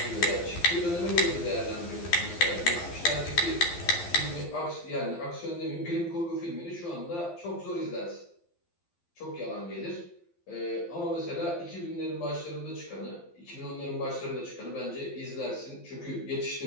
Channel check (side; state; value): right; late; 12 ms